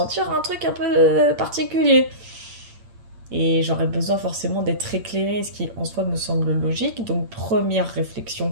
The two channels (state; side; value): late; left; 8.8 ms